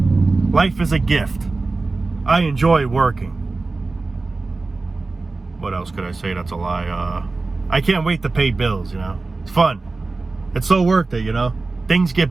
Life is a gift. I enjoy working. What else could I say that's a lie? I can't wait to pay bills, you know. It's fun. It's so worth it, you know. Things get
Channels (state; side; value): quieter; left; 3.6 dB